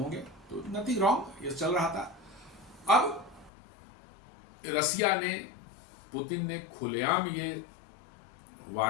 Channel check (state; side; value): drops out; right; at 3.5 s